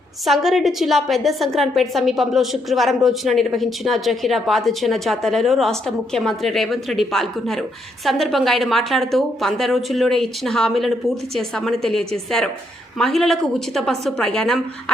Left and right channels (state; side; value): normal; both; correlation 0.76